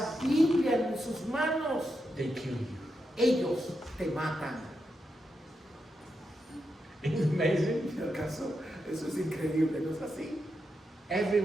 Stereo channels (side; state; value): both; normal; correlation 0.85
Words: Biblia en sus manos, they kill you. ellos te matan. Isn't it amazing? En el caso, eso es increíble, ¿no es así?